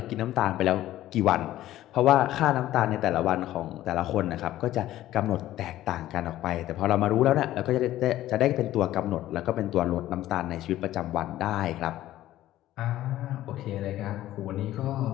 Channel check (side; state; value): right; quieter; 14.2 dB